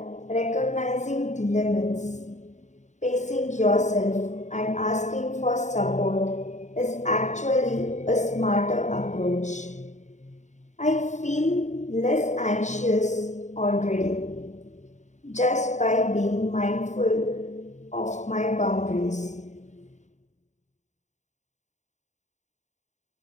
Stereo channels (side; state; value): right; late; 0.34 ms